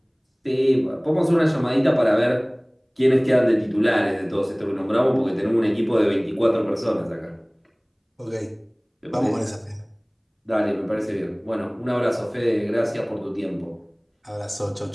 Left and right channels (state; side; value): identical; both; correlation 1.00